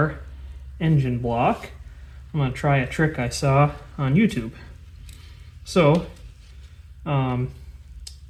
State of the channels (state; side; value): identical; both; correlation 1.00